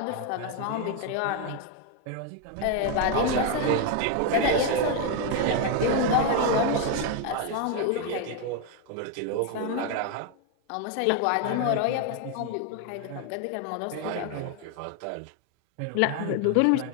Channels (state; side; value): different; both; correlation 0.01